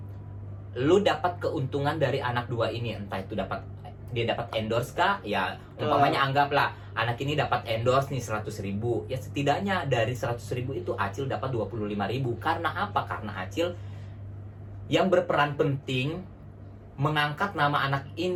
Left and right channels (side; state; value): both; identical; correlation 1.00